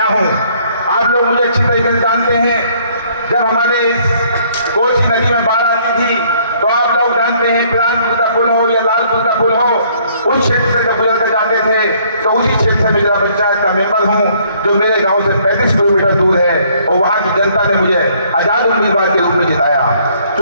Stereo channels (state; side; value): inverted; both; correlation -0.63